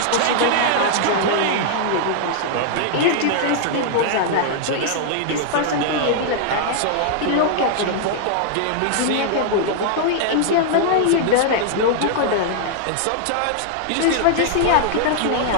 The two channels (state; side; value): different; both; correlation -0.01